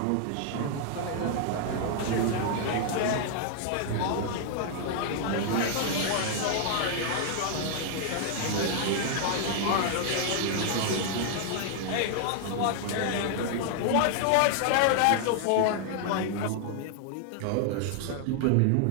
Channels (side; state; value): both; different; correlation 0.00